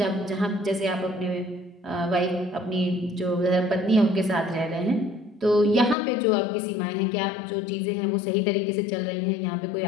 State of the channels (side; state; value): right; drops out; at 6.0 s